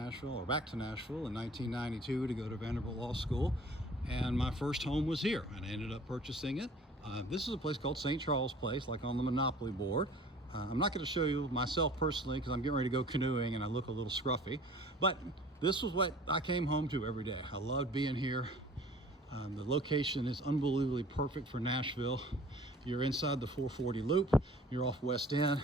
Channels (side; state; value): both; normal; correlation 0.48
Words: or back to Nashville, in 1992 to go to Vanderbilt Law School, and my first home was here, and I ended up purchasing it. This is a place called St. Charles Place, like on the Monopoly board. I'm not going to show you myself personally because I'm getting ready to go canoeing and I look a little scruffy, but this was what I came home to every day. I loved being here. The location is unbelievably perfect for Nashville. You're inside the 440 loop, you're off West End.